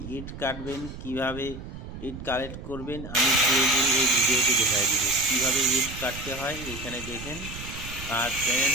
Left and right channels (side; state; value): right; noise; rumble, 11 dB below the sound